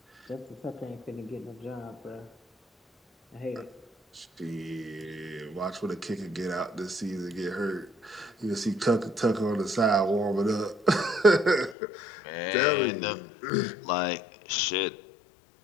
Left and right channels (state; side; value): drops out; right; at 11.8 s